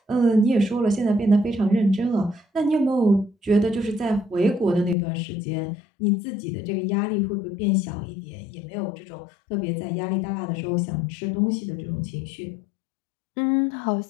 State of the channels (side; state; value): right; drops out; at 5.0 s